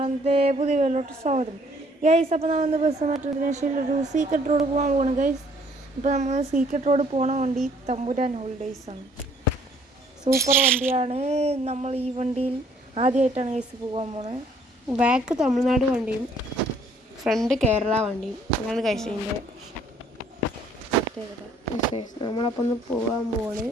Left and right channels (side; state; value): both; normal; correlation 0.62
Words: പുതിയ വീട്ടിലോട്ട് സ്വാഗതം. ഗൈസ്, അപ്പോൾ നമ്മൾ ബസ് മെട്രോദേശയിൽ ഒരു സീക്രട്ട് റോഡ് പോകാൻ പോകണം ഗൈസ്. ഇപ്പോൾ നമ്മൾ സീക്രട്ട് റോഡ് പോകണ വണ്ടി തമ്പുരാൻ ഹോളിഡേയ്സ് ആണ്. സൂപ്പർ വണ്ടിയാണ്. നമ്മൾ ഈ വണ്ടിയിൽ ആദ്യമായിട്ടാണ് ഗൈസ് പോകാൻ പോണത്. ബാക്ക് തമിഴ്നാട് വണ്ടിയും ഫ്രണ്ട് കേരള വണ്ടിയും അങ്ങനെ കഴിച്ചതിൻ്റെ നമ്മളപ്പോൾ ഒന്ന് പോകാൻ പോണ്.